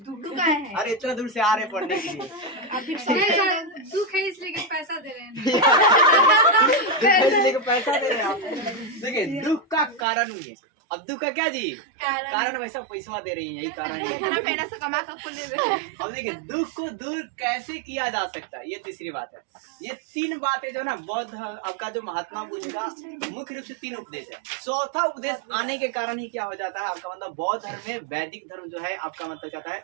है। अरे इतना दूर से आ रहे हैं पढ़ने के लिए। दुख है इसलिए कि पैसा दे रहे हैं। दुख है इसलिए कि पैसा दे रहे हैं आप। देखिए दुख का कारण हुई है। अब दुख का क्या जी कारण वैसा पैसा दे रही है, यही कारण है। अब देखिए दुख को दूर कैसे किया जा सकता है, ये तीसरी बात है। ये 3 बातें जो ना बौद्ध आपका जो महात्मा बुद्ध का मुख्य रूप से 3 उपदेश है। चौथा उपदेश आने के कारण ही क्या हो जाता है आपका मतलब बौद्ध धर्म में वैदिक धर्म जो है आपका मतलब कहता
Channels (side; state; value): left; drops out; at 10.1 s